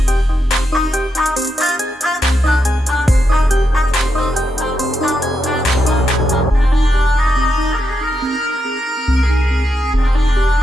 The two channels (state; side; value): normal; both; correlation 0.84